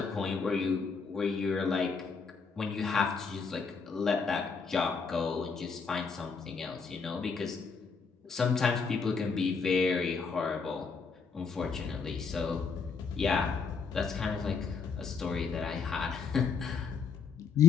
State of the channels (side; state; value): right; quieter; 5.1 dB